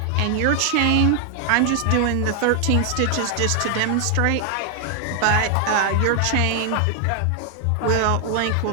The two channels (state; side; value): different; both; correlation 0.00